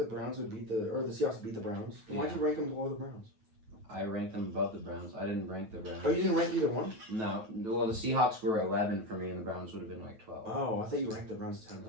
Browns would beat the Seahawks would beat the Browns. Then why'd Yeah. you rank them below the Browns? I ranked them above the Browns. I didn't rank the Browns. Oh, you didn't rank either one? No. Well, the Seahawks were 11 for me, and the Browns would have been like 12. Oh, I thought you ranked the Browns 10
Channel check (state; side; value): late; left; 9.2 ms